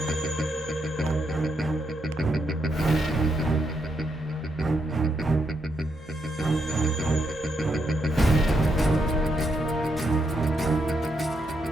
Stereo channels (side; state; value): both; normal; correlation 0.80